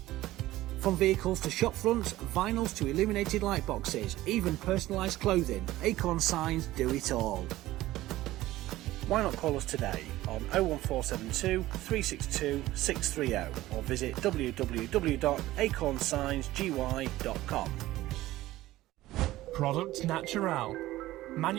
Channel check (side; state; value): left; quieter; 16.3 dB